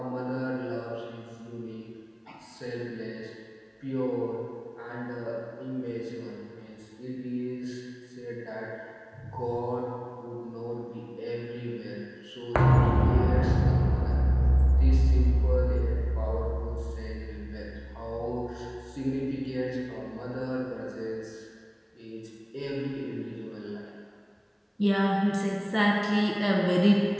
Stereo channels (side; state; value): both; identical; correlation 1.00